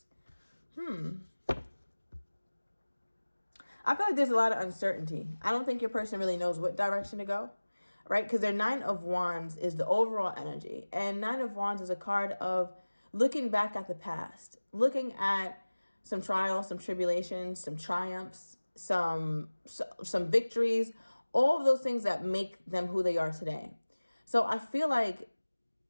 I feel like there's a lot of uncertainty. I don't think your person really knows what direction to go, right? Because their Nine of Wands is the overall energy. And Nine of Wands is a card of looking back at the past, looking at some trials, some tribulations, some triumphs, some victories, all of those things that make them who they are today. So I feel like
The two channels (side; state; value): both; inverted; correlation -1.00